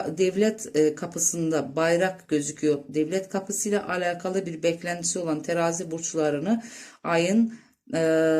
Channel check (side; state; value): both; identical; correlation 1.00